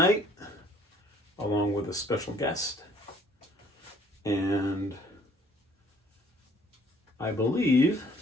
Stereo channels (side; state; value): both; normal; correlation 0.59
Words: along with a special guest. And I believe